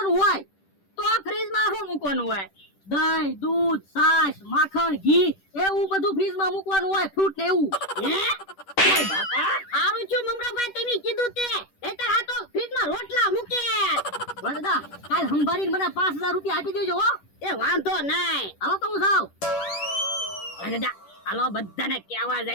હોય. તો આ ફ્રીજમાં શું મૂકવાનું હોય? દહીં, દૂધ, છાશ, માખણ, ઘી એવું બધું ફ્રીજમાં મૂકવાનું હોય, ફ્રૂટ ને એવું. હે ઓય બાપા, આવું છું મમરાભાઈ તમે કીધું તે. નહીતર આ તો ફ્રીજમાં રોટલા મૂકે. દાદા કાલ સંભાળીને મને 5,000 રૂપિયા આપી દેજો હો. એ વાંધો નહીં, હાલો તો હું જાઉં. દાદા હાલો બધાને કહેવા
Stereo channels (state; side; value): late; right; 10 ms